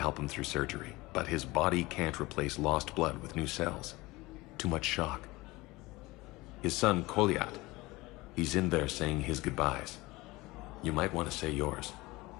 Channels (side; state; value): right; quieter; 21.2 dB